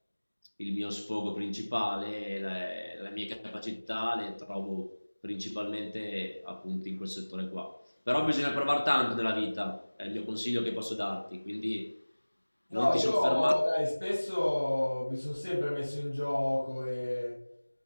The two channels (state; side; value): inverted; both; correlation -1.00